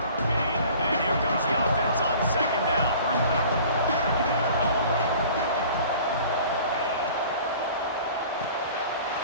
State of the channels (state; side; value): inverted; both; correlation -0.47